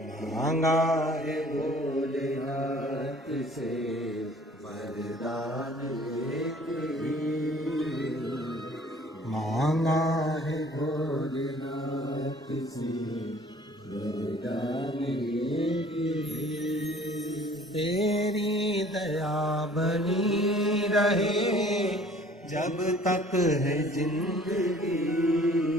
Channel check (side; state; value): both; normal; correlation 0.52